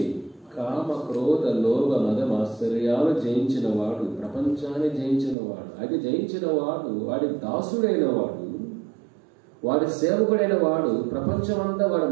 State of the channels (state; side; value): drops out; left; at 5.4 s